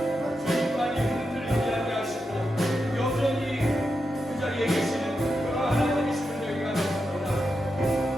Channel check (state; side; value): normal; both; correlation 0.87